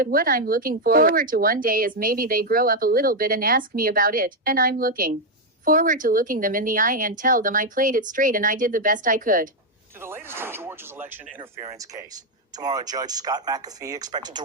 what I'm looking forward to one day is maybe they grow up a little bit and ask me about it, and I'm looking forward to looking them in the eye and tell them I played it straight and I did the best I could. To the latest in Georgia's election interference case. Tomorrow, Judge Scott McAfee expected to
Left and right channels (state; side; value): normal; both; correlation 0.02